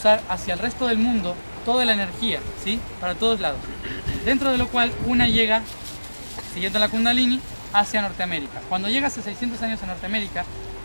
hacia el resto del mundo toda la energía, ¿sí? Para todos lados. Dentro de lo cual una llega, siguiendo la Kundalini, hacia Norteamérica. Cuando llega hace 600 años a Norteamérica,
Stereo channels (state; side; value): inverted; both; correlation -1.00